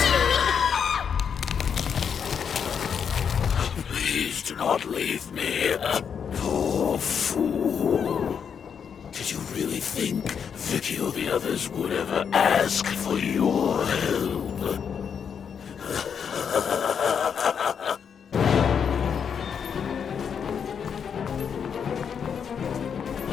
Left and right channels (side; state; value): right; quieter; 7.2 dB